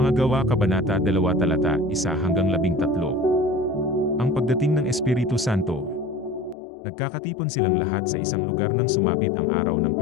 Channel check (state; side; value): drops out; right; at 6.6 s